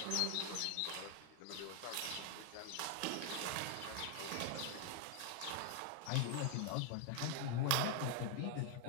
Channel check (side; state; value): both; different; correlation 0.00